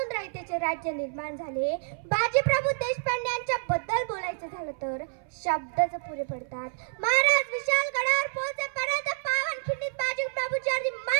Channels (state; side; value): silent; left; 59 dB below the other